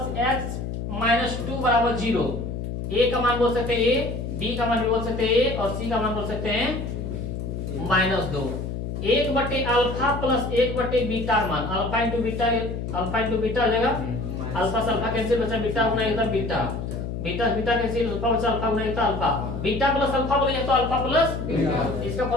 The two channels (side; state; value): left; noise; hum, 5 dB below the sound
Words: x - 2 = 0। a का मान बोल सकते हैं a, b का मान भी बोल सकते हैं a, और c का मान बोल सकते हैं -2। 1/अल्फा + 1/बीटा मान। अल्फा इंटू बीटा हो जाएगा। अल्फा से अल्फा कैंसिल बचा, बीटा होना एकदम beta, beta beta cancel, alpha बचा, अल्फा होना एकदम अल्फा। बीटा प्लस अल्फा बोलेंगे तो अल्फा प्लस बीटा। इसका